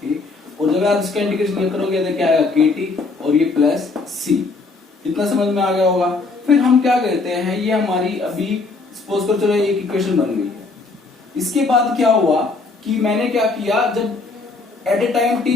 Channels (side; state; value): right; quieter; 3.8 dB